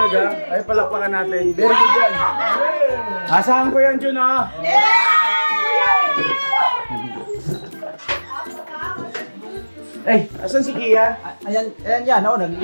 Ay, palakpakan natin. Very good yan. Asahan ko yan, Jun, ha? Eh, asan si Kian? Ayan yan, naglinis.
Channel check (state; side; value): inverted; both; correlation -1.00